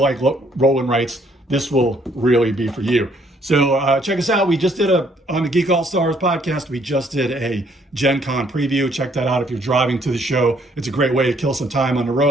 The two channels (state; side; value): normal; both; correlation 0.66